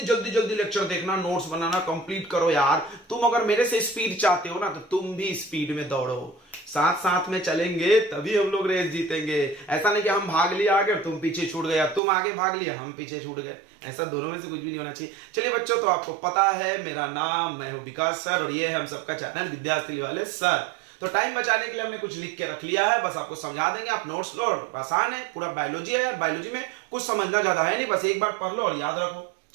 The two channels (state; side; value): drops out; left; at 12.0 s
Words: जल्दी जल्दी लेक्चर देखना, नोट्स बनाना कंप्लीट करो यार। तुम अगर मेरे से स्पीड चाहते हो ना तो तुम भी स्पीड में दौड़ो, साथ साथ में चलेंगे तभी हम लोग रेस जीतेंगे। ऐसा नहीं कि हम भाग लिया आगे और तुम पीछे छूट गए, तुम आगे भाग लिया हम पीछे छूट गए। ऐसा दोनों में से कुछ भी नहीं होना चाहिए। चलिए बच्चों, तो आपको पता है मेरा नाम, मैं हूं विकास सर और ये है हम सबका चैनल विद्यार्थी वाले सर। तो टाइम बचाने के लिए हमने कुछ लिख के रख लिया है, बस आपको समझा देंगे, आप नोट्स लो। आसान है, पूरा बायोलॉजी है यार, बायोलॉजी में कुछ समझना ज्यादा है नहीं, बस एक बार पढ़ लो और याद रखो